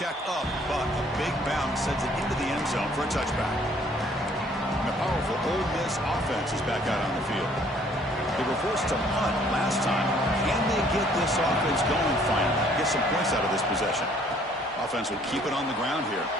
up, but a big bounce sends it into the end zone for a touchback. And the powerful Ole Miss offense is back out on the field. They were forced to punt last time. Can they get this offense going finally? Get some points out of this possession. offense will keep it on the ground here.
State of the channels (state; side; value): normal; both; correlation 0.60